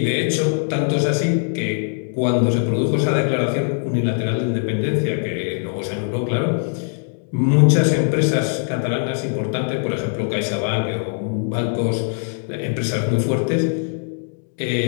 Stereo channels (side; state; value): right; silent; 65 dB below the other